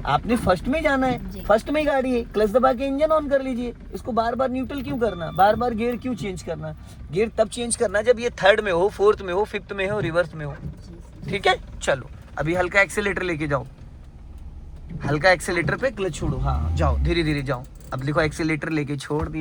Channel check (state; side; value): identical; both; correlation 1.00